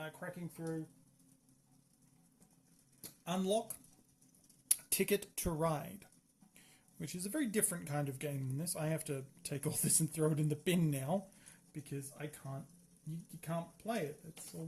cracking through Unlock Ticket to Ride, which is a very different kind of game than this. I have to take all this and throw it in the bin now because I can't. You can't play it. It's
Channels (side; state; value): both; identical; correlation 1.00